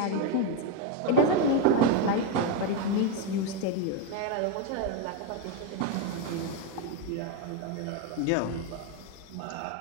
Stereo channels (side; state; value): both; different; correlation 0.02